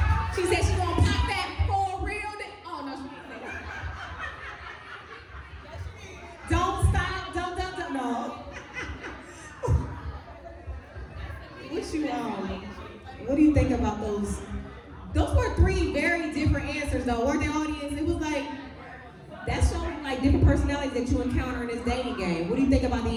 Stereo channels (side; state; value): both; identical; correlation 1.00